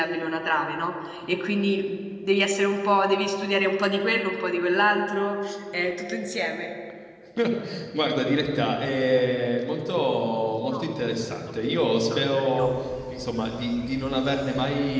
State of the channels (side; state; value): both; identical; correlation 1.00